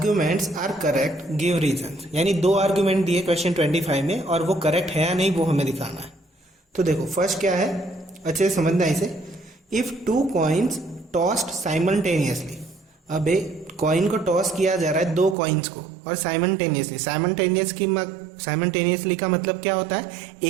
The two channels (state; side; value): drops out; left; at 15.4 s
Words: are correct, give reason. यानी 2 आर्ग्यूमेंट दिए क्वेश्चन 25 में और वो करेक्ट है या नहीं वो हमें दिखाना है। तो देखो फर्स्ट क्या है, अच्छे से समझना इसे, इफ 2 कॉइन्स टॉस्ड साइमल्टेनियसली, अब कॉइन को टॉस किया जा रहा है 2 कॉइन्स को और साइमल्टेनियसली, साइमल्टेनियसली का मतलब क्या होता है,